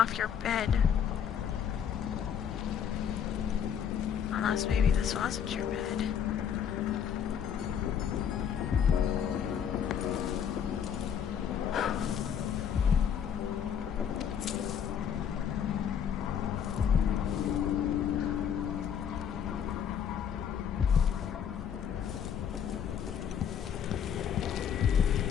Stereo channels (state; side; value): quieter; right; 8.2 dB